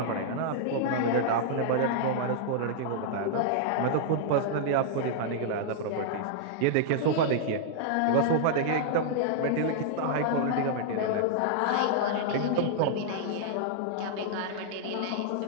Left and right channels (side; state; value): both; different; correlation -0.01